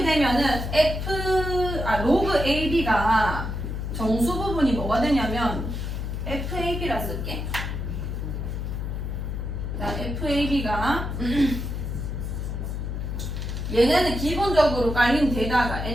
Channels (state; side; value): noise; left; hum, 4 dB below the sound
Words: 되면은 로그 AB가 정수 부분이 뭐가 되냐면 FAB라 쓸게. 자, FAB가 얘네는 기본적으로 깔린 데다가